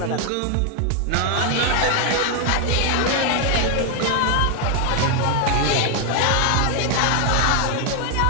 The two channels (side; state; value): both; different; correlation 0.00